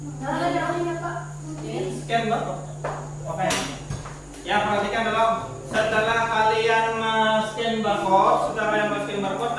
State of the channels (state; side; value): identical; both; correlation 1.00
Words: Scan barcode. Oke. Ya, perhatikan dulu. Setelah kalian scan barcode,